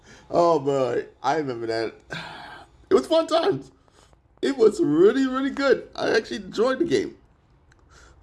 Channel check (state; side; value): identical; both; correlation 1.00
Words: Oh man, I remember that. It was fun times. It was really, really good. I actually enjoyed the game.